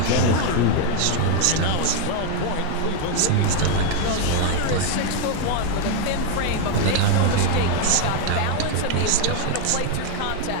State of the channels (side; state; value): both; different; correlation 0.00